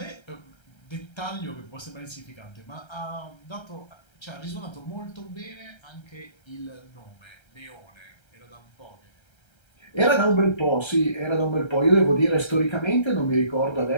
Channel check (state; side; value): late; right; 1.3 ms